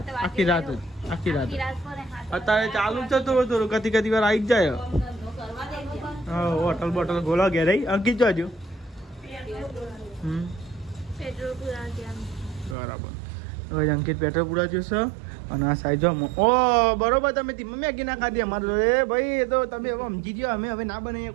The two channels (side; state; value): left; drops out; at 12.8 s